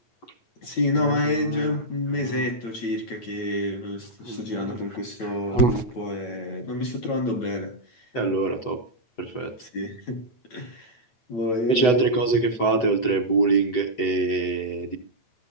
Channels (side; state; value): right; late; 8.0 ms